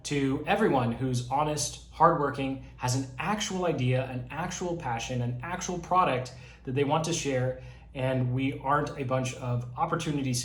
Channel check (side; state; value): both; identical; correlation 1.00